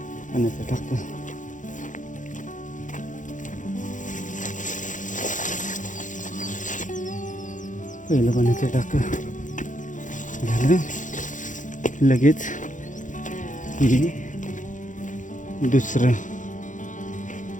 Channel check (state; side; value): late; right; 0.37 ms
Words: पाण्याचं टाकं पहिलं पाण्याचं टाकं झालं. लगेच हे दुसरं